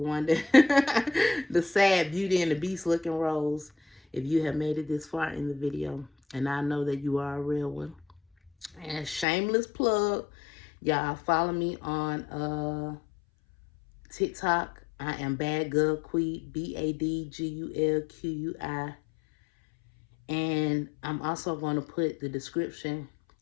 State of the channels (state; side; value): drops out; right; at 9.2 s